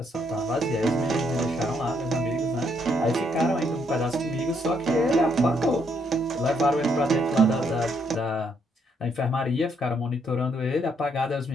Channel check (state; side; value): normal; both; correlation 0.73